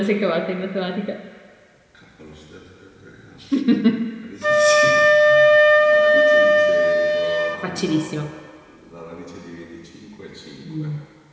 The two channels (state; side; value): identical; both; correlation 1.00